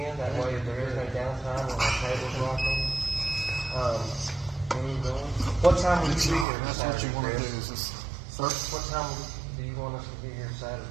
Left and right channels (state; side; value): drops out; left; at 6.5 s